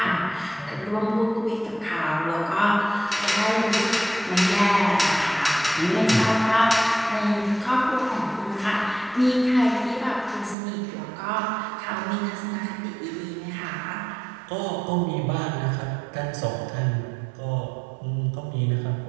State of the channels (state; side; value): drops out; left; at 10.6 s